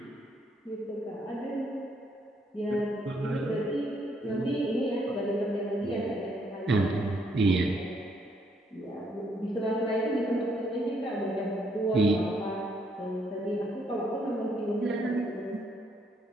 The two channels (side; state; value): both; normal; correlation 0.71